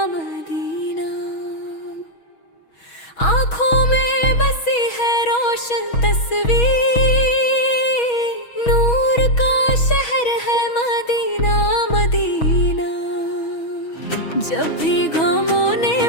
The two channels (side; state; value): right; late; 6.3 ms